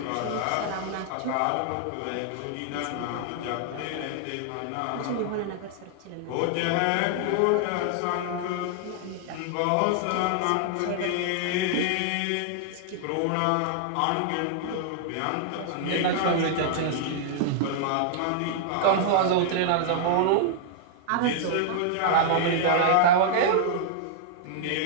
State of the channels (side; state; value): both; different; correlation -0.01